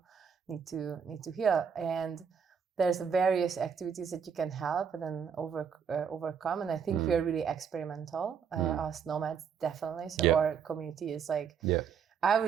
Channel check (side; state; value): left; quieter; 7.0 dB